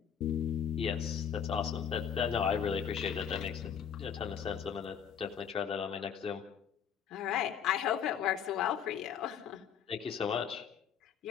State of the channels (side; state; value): right; quieter; 8.1 dB